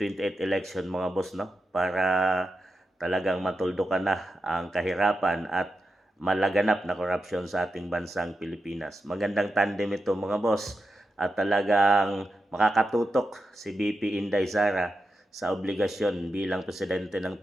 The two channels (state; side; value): normal; both; correlation 0.89